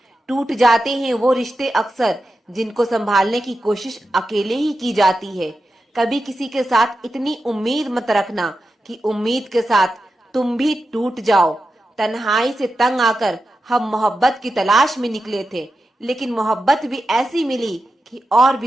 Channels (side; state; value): both; normal; correlation 0.90